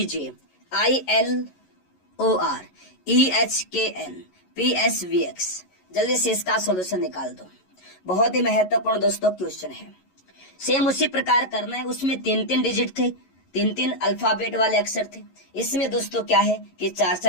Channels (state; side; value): late; right; 11 ms